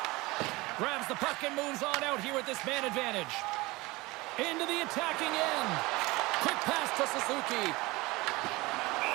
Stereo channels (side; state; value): left; quieter; 22.1 dB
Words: Grabs the puck and moves on out here with this man advantage. Into the attacking end. Quick pass to Suzuki.